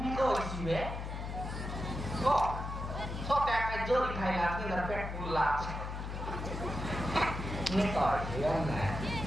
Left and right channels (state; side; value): noise; left; hum, 6 dB below the sound